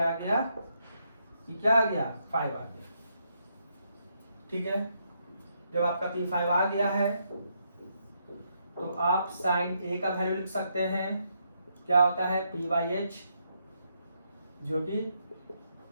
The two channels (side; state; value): both; inverted; correlation -0.77